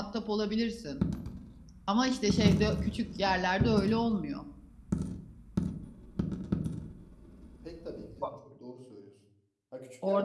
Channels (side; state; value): both; identical; correlation 1.00